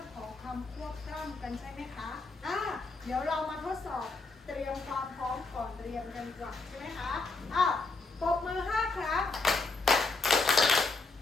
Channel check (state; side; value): quieter; right; 3.6 dB